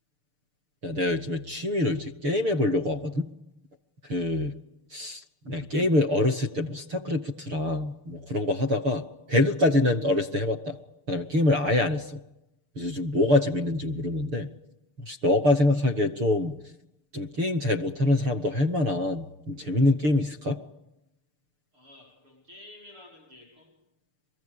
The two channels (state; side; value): late; left; 6.7 ms